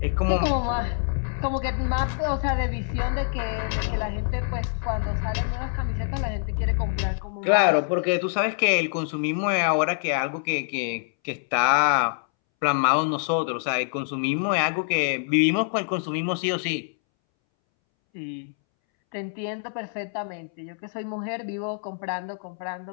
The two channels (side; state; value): right; silent; 61 dB below the other